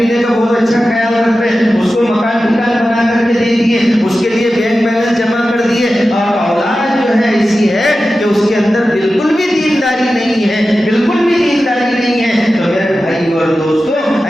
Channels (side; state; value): both; normal; correlation 0.93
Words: کا بہت اچھا خیال رکھ رہے ہیں، اس کو مکان بنا کر کے دے دیے، اس کے لیے بینک بیلنس جمع کر دیے، اور اولاد جو ہے ایسی ہے کہ اس کے اندر بالکل بھی دینداری نہیں ہے، بالکل بھی دینداری نہیں ہے، تو میرے بھائی اور دوستوں